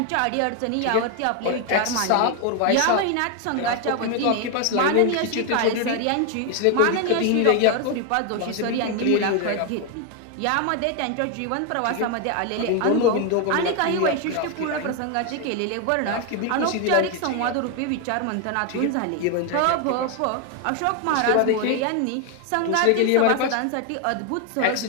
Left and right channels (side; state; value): both; different; correlation 0.01